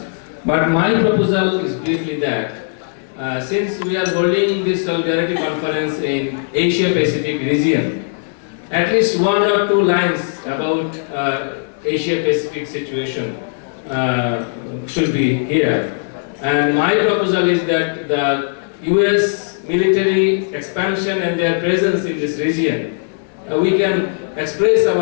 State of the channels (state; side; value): silent; right; digital silence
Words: But my proposal is briefly that since we are holding this Solidarity Conference in Asia-Pacific region, at least 1 or 2 lines about Asia-Pacific situation should be here. And my proposal is that the US military expansion and their presence in this region, we can express